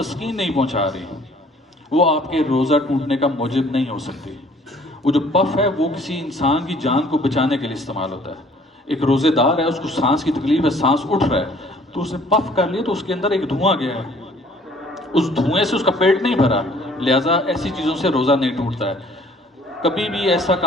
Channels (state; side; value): normal; both; correlation 0.57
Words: نہیں پہنچا رہی وہ آپ کے روزہ ٹوٹنے کا موجب نہیں ہو سکتی. وہ جو پف ہے وہ کسی انسان کی جان کو بچانے کے لیے استعمال ہوتا ہے. ایک روزے دار ہے، اس کو سانس کی تکلیف ہے، سانس اٹھ رہا ہے، تو اس نے پف کر لیا تو اس کے اندر ایک دھواں گیا ہے، اس دھوئیں سے اس کا پیٹ نہیں بھرا، لہٰذا ایسی چیزوں سے روزہ نہیں ٹوٹتا ہے. کبھی بھی ایسا